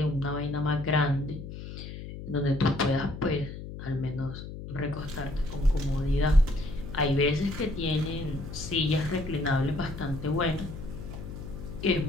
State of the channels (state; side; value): noise; left; hum, 10 dB below the sound